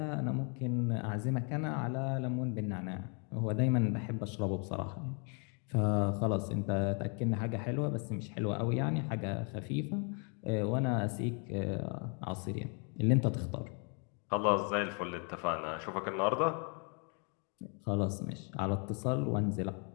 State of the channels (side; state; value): right; quieter; 37.8 dB